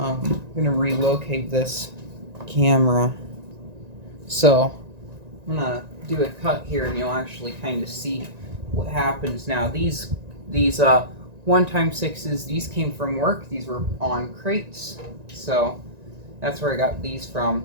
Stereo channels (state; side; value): late; left; 1.9 ms